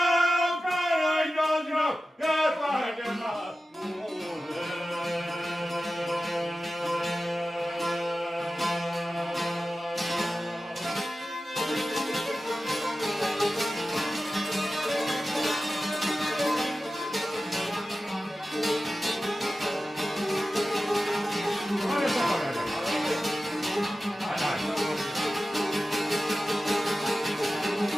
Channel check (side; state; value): both; normal; correlation 0.94